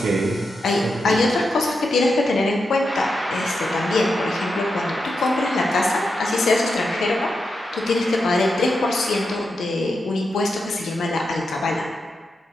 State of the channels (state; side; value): normal; both; correlation 0.87